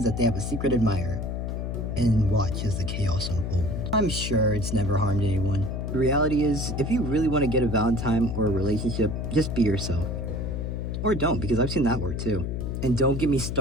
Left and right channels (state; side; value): noise; left; hum, 3 dB below the sound